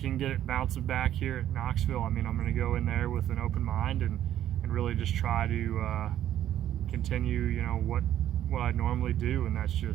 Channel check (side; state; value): left; quieter; 11.7 dB